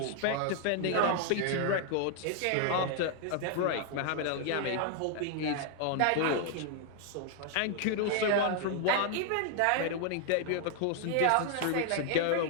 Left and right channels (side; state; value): both; different; correlation 0.00